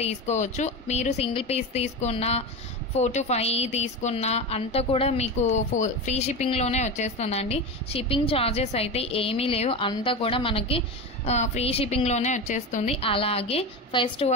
తీసుకోవచ్చు. మీరు సింగిల్ పీస్ తీసుకున్న 4 to 5 తీసుకున్న అంతా కూడా మీకు ఫ్రీ షిప్పింగ్లోనే వచ్చేస్తుందండి. షిప్పింగ్ ఛార్జెస్ అయితే ఏమీ లేవు, అంతా కూడా మనకి ఫ్రీ షిప్పింగ్లోనే వచ్చేస్తుంది. అలాగే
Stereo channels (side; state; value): both; normal; correlation 0.22